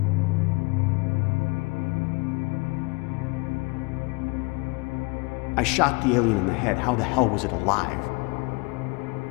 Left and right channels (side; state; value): right; quieter; 27.7 dB